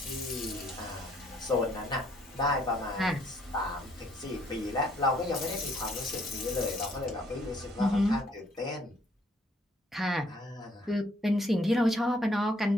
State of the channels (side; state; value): both; normal; correlation 0.65